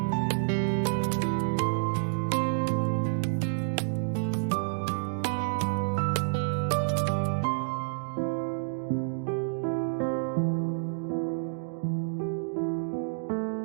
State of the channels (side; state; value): left; silent; digital silence